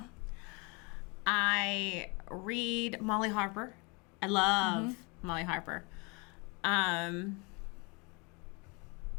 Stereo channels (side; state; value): right; quieter; 30.2 dB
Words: I read Molly Harper. I love Molly Harper.